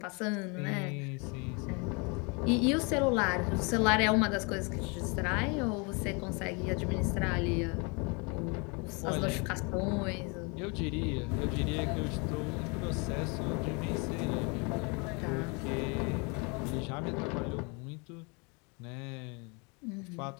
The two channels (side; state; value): right; quieter; 31.5 dB